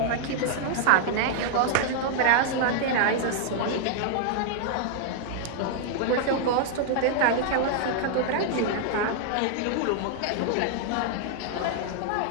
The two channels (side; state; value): both; different; correlation 0.00